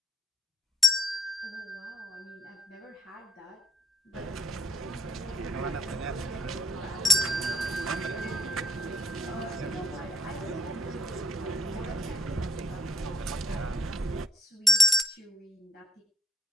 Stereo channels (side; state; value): both; normal; correlation 0.63